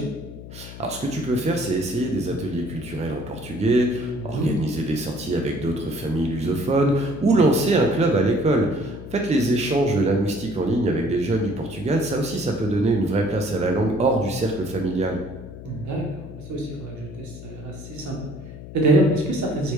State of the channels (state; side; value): noise; left; hum, 13 dB below the sound